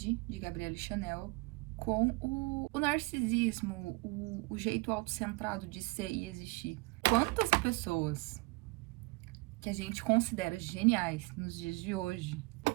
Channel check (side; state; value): left; quieter; 25.9 dB